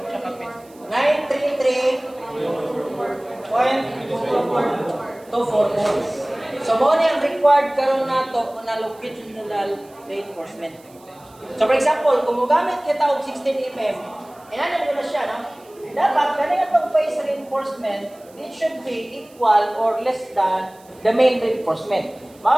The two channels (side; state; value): right; noise; hiss, 28 dB below the sound